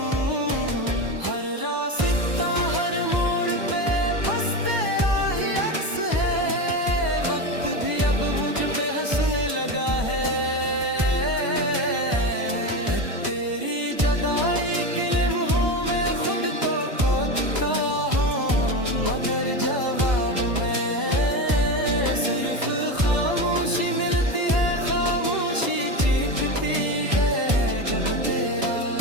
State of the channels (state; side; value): late; left; 1.0 ms